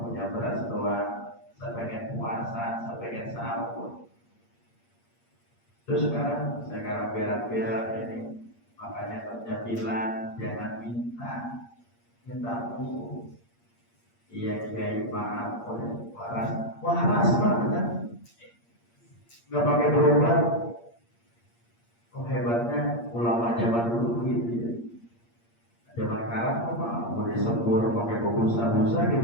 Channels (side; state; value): right; late; 8.6 ms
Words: beras doang. Saya pengen puasa, saya pengen sahur. Terus sekarang berak-berak ini. Makanya kerja bilang jangan minta mulu. Iya kiai maaf, waras banget. Nggak pakai berobat. Oh hebatnya ulama zaman dulu begitu ya. Zaman sekarang apa? Mau disembur pakai busa-busa di